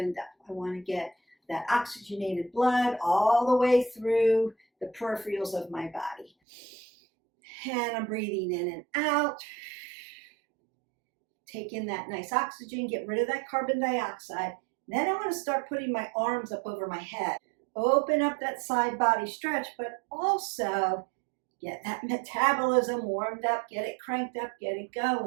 up. I want to get that oxygenated blood all the way through the peripherals of my body. And I'm breathing in and out. Take in that nice oxygen, get rid of that carbon dioxide. Then I want to start putting my arms up over my head. Open up that side body stretch, but also get that metabolism warmed up, get it cranked up, get it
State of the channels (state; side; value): drops out; left; at 6.3 s